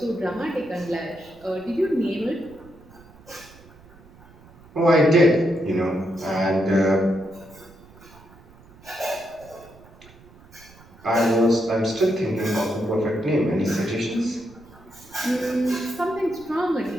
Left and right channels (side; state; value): right; noise; rumble, 24 dB below the sound